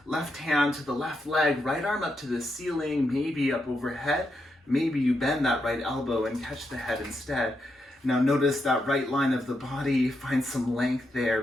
left hand to the left leg, right arm up to the ceiling, maybe up overhead, maybe you bend that right elbow and catch the head instead. Now notice that right line of the body, find some length there,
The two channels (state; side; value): normal; both; correlation 0.83